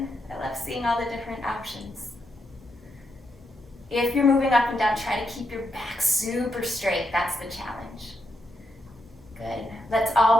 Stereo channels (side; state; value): both; normal; correlation 0.81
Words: I love seeing all the different options. If you're moving up and down, try to keep your back super straight. That's the challenge. Good. Let's